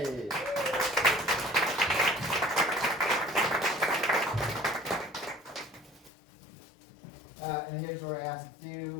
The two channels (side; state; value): right; drops out; at 6.1 s